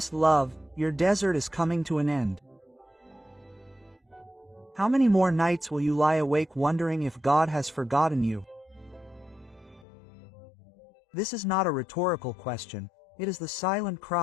love, your desert is coming to an end. How many more nights will you lie awake wondering if God has forgotten you? This is not a rhetorical question, it is the silent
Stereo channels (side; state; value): right; drops out; at 9.9 s